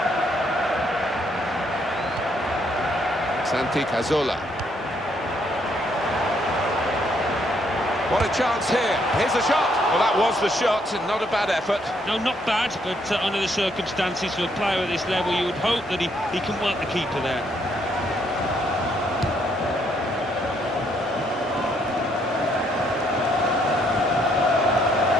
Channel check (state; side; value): normal; both; correlation 0.71